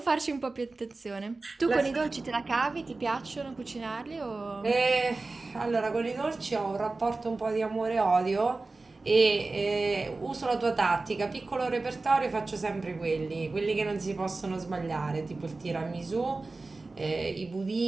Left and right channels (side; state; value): left; quieter; 3.5 dB